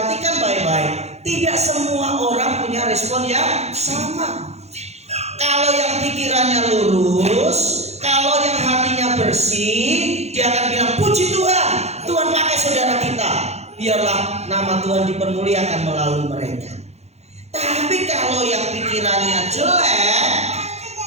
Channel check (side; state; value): left; late; 0.31 ms